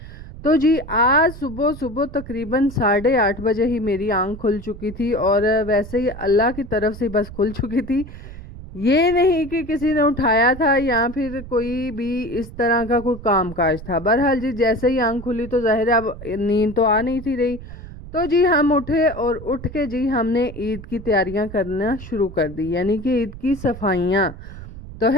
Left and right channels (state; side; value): noise; right; rumble, 14 dB below the sound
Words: तो जी आज सुबह सुबह तकरीबन 8:30 बजे ही मेरी आंख खुल चुकी थी, और वैसे ही अल्लाह की तरफ से बस खुल चुकी थी। ये नहीं कि किसी ने उठाया था या फिर कोई भी इस तरह का कोई काम काज था। बहरहाल जी जैसे ही आंख खुली तो जाहिर है अब नींद तो आ नहीं थी रही। तो जी हम उठे और उठ के जी हमने ईद की तैयारियां करना शुरू कर दी, यानी कि ईद की सफाइयां। तो